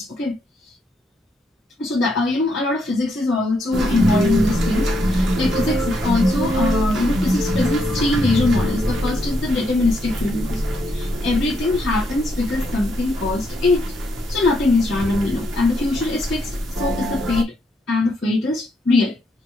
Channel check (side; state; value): both; normal; correlation 0.77